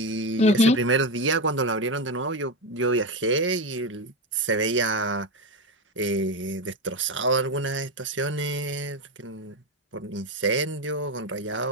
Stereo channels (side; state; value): both; normal; correlation 0.15